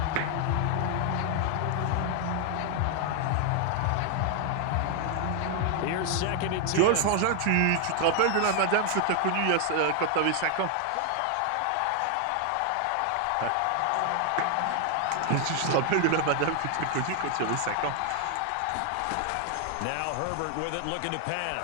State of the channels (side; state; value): both; different; correlation 0.00